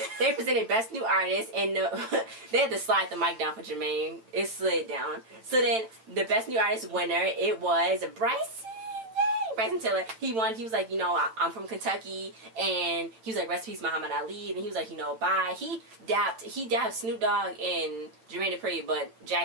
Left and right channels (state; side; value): late; left; 9.0 ms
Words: they presented Best New Artist, and they had to slide the mic down for Jermaine. It slid down. So then the Best New Artist winner, it was Bryson Tiller. He won. He was like, you know, I'm from Kentucky, and he was like, rest in peace, Muhammad Ali, and he was like, you know, bye. He dapped Snoop Dogg and Jermaine Dupri, but